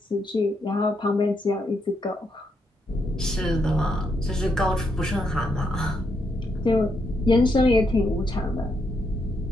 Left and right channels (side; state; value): both; normal; correlation 0.79